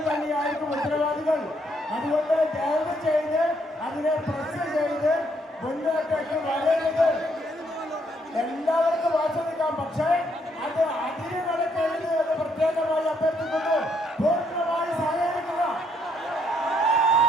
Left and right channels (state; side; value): normal; both; correlation 0.71